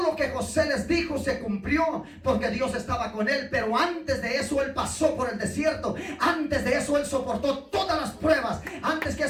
lo que José les dijo se cumplió porque Dios estaba con él. Pero antes de eso él pasó por el desierto. Antes de eso él soportó todas las pruebas. Antes que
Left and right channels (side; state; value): both; identical; correlation 1.00